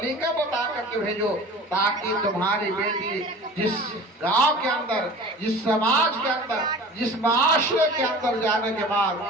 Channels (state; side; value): normal; both; correlation 0.40